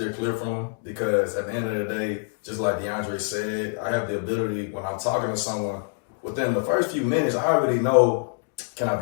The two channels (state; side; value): silent; right; digital silence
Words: clear from them, because at the end of the day, just like De'Andre said, I have the ability, when I'm talking to someone, within the first few minutes, I already know, can I